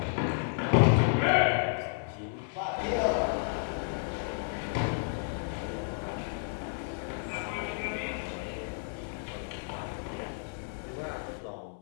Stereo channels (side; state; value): right; silent; 57 dB below the other